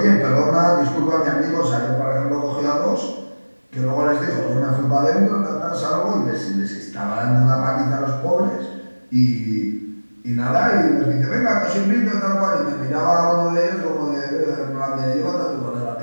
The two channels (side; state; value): both; inverted; correlation -1.00